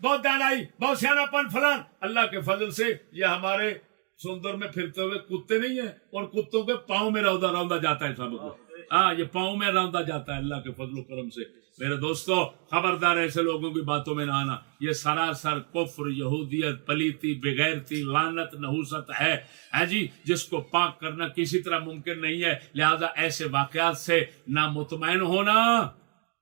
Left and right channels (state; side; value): quieter; left; 37.7 dB